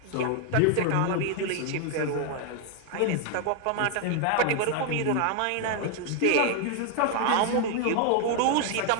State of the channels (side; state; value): both; different; correlation 0.00